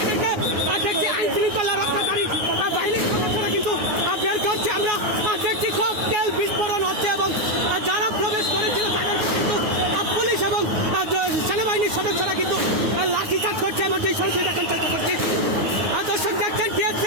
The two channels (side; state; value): left; late; 9.6 ms